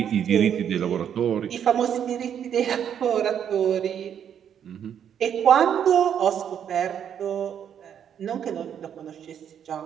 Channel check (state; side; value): quieter; left; 8.8 dB